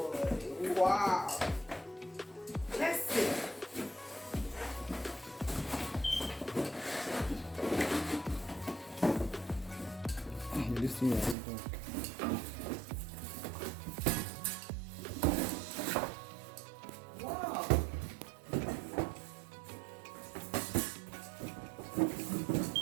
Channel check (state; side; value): drops out; left; at 11.4 s